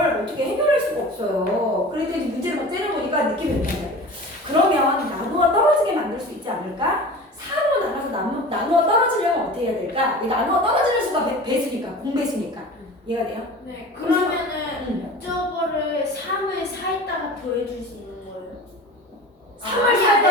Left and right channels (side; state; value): both; normal; correlation 0.36